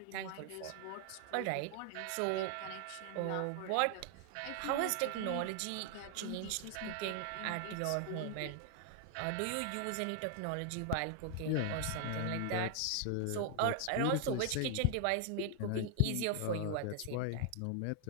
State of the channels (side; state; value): both; different; correlation 0.00